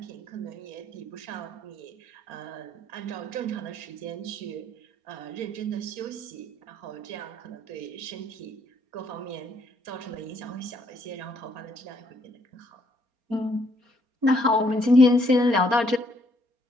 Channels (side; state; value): left; late; 4.3 ms